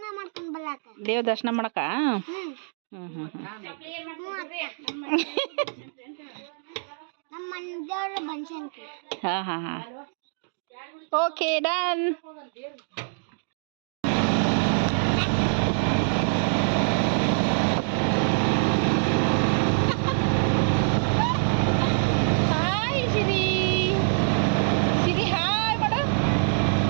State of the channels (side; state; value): left; silent; 60 dB below the other